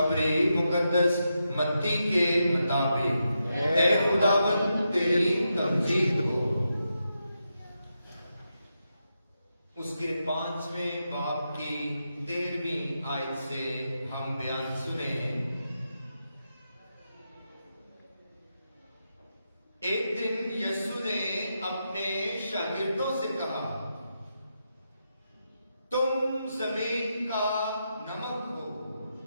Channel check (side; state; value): both; inverted; correlation -0.85